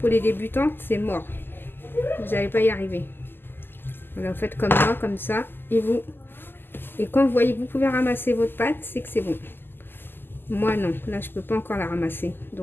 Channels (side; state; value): right; late; 0.098 ms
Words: les débutantes, c'est mort. Vous n'allez pas y arriver. Voilà, vous faites comme moi, comme ça. Et quand vous voyez que vous pouvez ramasser votre pâte, c'est que c'est bon. Moi, non. Là, je peux pas encore la ramasser.